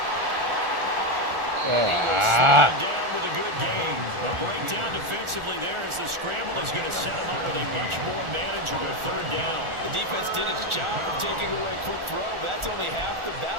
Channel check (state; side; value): late; left; 1.4 ms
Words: He will slow down with a good gain. A breakdown defensively there as the scramble is going to set him up with a much more manageable third down. The defense did its job of taking away a quick throw, but that's only half the